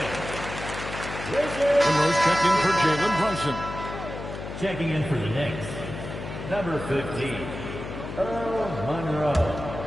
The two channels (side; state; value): left; noise; hum, 9 dB below the sound